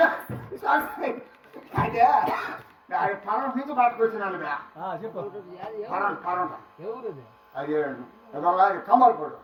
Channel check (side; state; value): both; identical; correlation 1.00